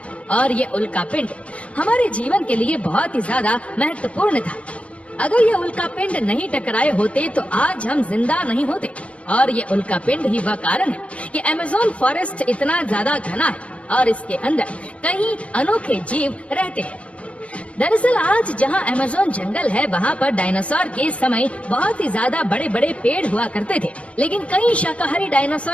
और ये उल्कापिंड हमारे जीवन के लिए बहुत ही ज्यादा महत्वपूर्ण था। अगर ये उल्कापिंड नहीं टकराए होते तो आज हम जिंदा नहीं होते। और ये उल्कापिंड ही वह कारण है कि अमेज़न फॉरेस्ट इतना ज्यादा घना है और इसके अंदर कई अनोखे जीव रहते हैं। दरअसल आज जहां अमेज़न जंगल है, वहां पर डायनासोर के समय बहुत ही ज्यादा बड़े बड़े पेड़ हुआ करते थे, लेकिन कई शाकाहारी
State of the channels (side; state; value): right; late; 0.063 ms